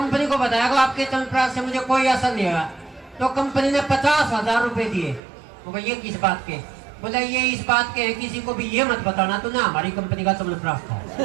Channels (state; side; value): drops out; left; at 5.2 s